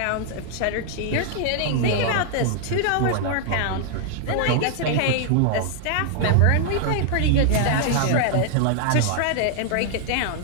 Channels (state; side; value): different; both; correlation 0.00